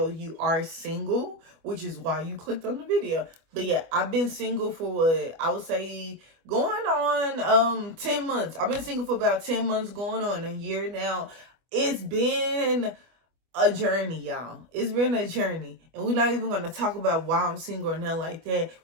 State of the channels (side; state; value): left; late; 25 ms